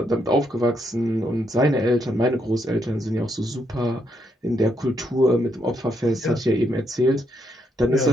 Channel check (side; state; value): both; normal; correlation 0.77